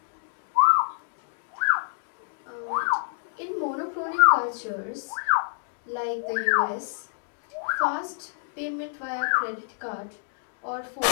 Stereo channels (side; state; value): right; silent; digital silence